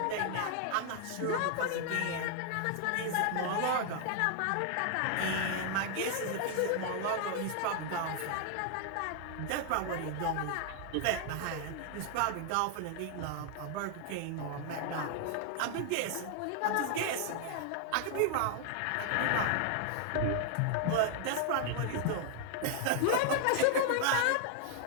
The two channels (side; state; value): both; different; correlation 0.00